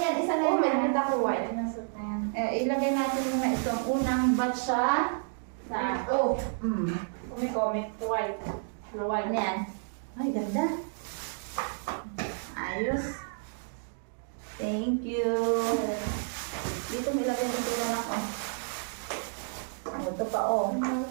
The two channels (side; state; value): left; silent; digital silence